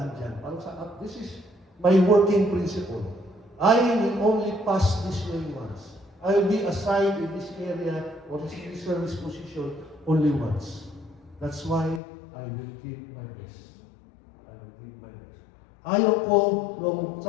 dyan. Parang this is my working principle. I will only pass this way once. I will be assigned in this area or this service position only once. That's why I will give my best. I will give my best. Ayaw ko, nung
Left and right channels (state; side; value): drops out; right; at 12.0 s